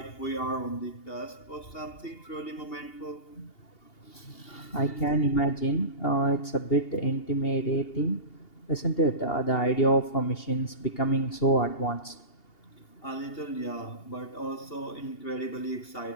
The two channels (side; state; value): right; late; 2.8 ms